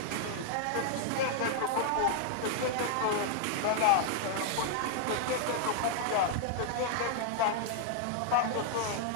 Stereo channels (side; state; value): both; different; correlation 0.00